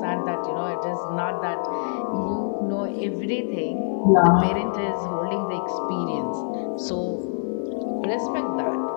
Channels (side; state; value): right; silent; 55 dB below the other